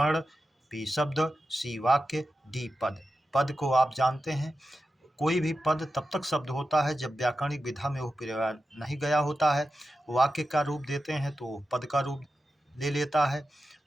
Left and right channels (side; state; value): both; normal; correlation 0.92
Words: बी शब्द, सी वाक्य, डी पद। पद को आप जानते हैं, कोई भी पद तब तक शब्द होता है जब व्याकरणिक विधा में वो प्रयोग नहीं गया होता है। वाक्य का रूप देते हैं तो पद का रूप ले लेता है।